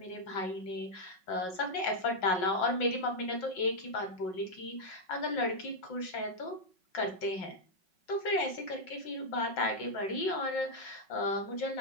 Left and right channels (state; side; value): late; right; 5.4 ms